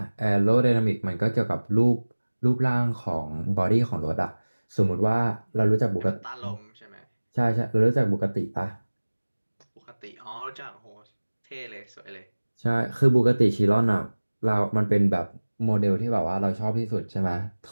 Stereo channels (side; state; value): both; inverted; correlation -1.00